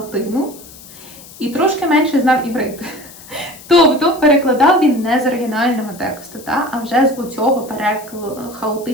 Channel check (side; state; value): left; noise; hiss, 19 dB below the sound